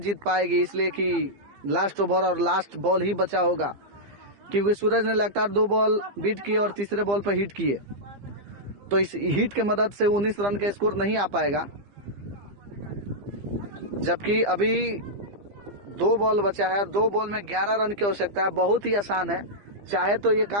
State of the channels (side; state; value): left; late; 15 ms